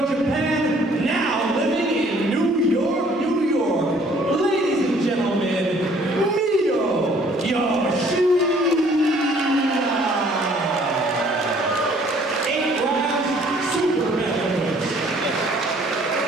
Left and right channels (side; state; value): both; normal; correlation 0.59